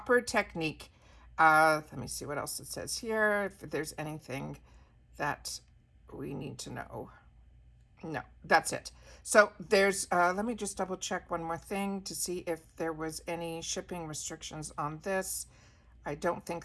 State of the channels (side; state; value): both; identical; correlation 1.00